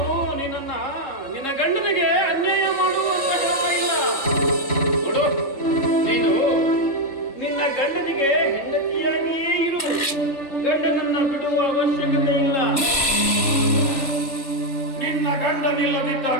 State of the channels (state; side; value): late; right; 3.4 ms